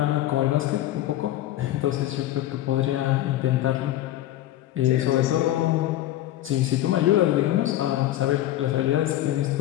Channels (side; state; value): right; quieter; 13.9 dB